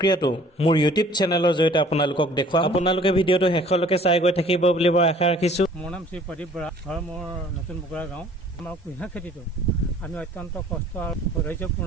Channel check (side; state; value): both; normal; correlation 0.53